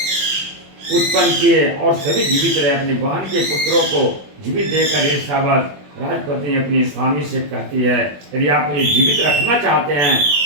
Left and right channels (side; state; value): left; late; 21 ms